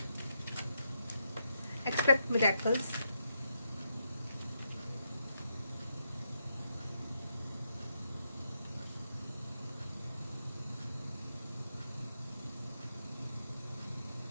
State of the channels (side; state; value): both; inverted; correlation -0.81